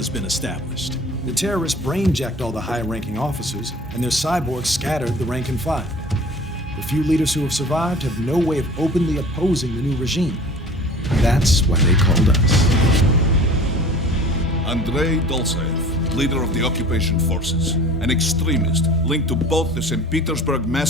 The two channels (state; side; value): normal; both; correlation 0.43